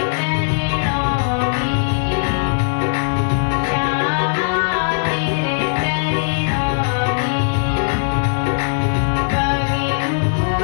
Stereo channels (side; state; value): right; silent; digital silence